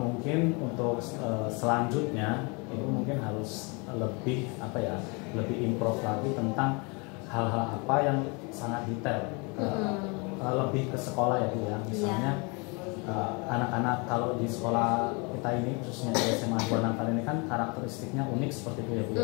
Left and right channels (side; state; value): right; quieter; 30.7 dB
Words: untuk selanjutnya Ibu mungkin harus lebih apa ya lebih improve lagi tentang hal-hal apa yang sangat detail, lebih ke sekolah ya Bu ya. Misalnya anak-anak kalau di sekolah kita ini khususnya di SMA 2 Natal ini kan karakteristiknya unik seperti itu ya Bu